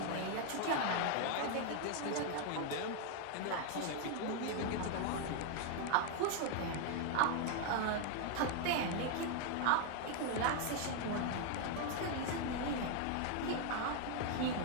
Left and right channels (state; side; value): different; both; correlation 0.00